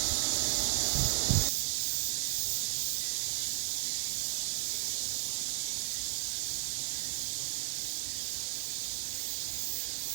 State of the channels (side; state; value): left; silent; digital silence